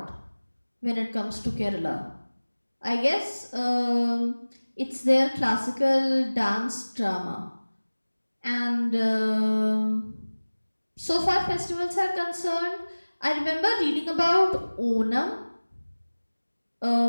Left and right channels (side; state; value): both; inverted; correlation -1.00